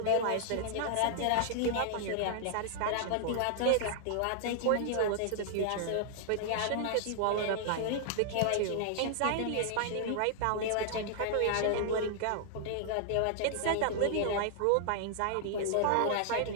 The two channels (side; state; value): both; different; correlation -0.01